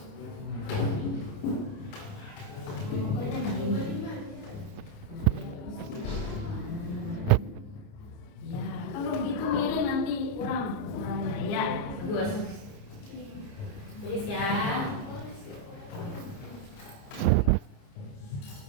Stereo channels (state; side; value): late; right; 29 ms